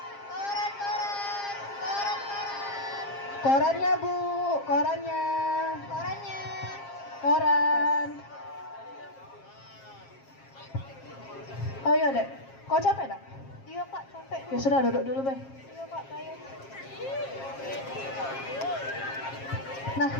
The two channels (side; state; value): right; late; 7.4 ms